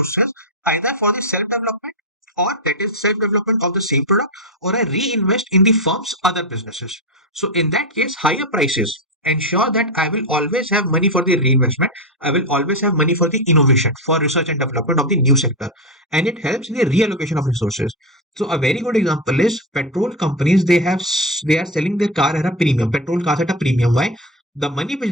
either for the self-development or that is self-development of the same product, or I reinvest in the firm's other businesses. So in that case, higher prices ensure that I will always have money for the reinvestment. I will always have money for the innovation, for research and development of the new sector. And it helps in the reallocation of resources. So a very good example is petrol companies. They are selling their car at a premium, petrol cars at a premium. Why? The money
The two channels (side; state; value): both; normal; correlation 0.12